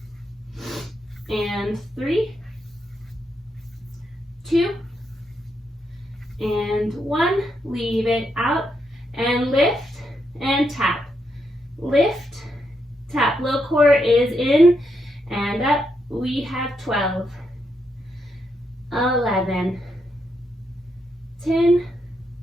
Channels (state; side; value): normal; both; correlation 0.80